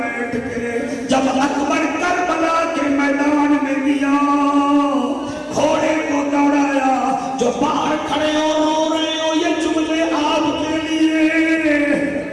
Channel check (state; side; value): identical; both; correlation 1.00